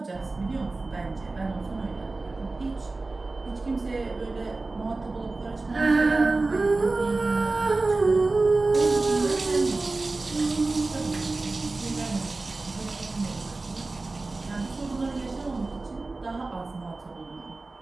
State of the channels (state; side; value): quieter; left; 3.4 dB